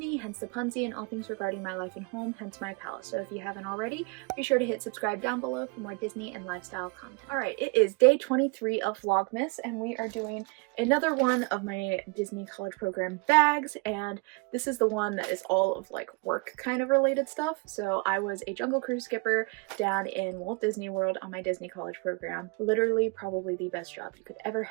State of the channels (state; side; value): quieter; left; 30.9 dB